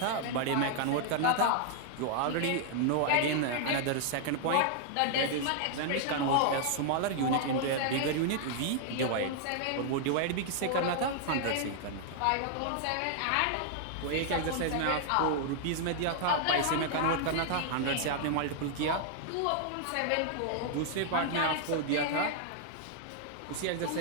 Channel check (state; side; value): different; both; correlation 0.00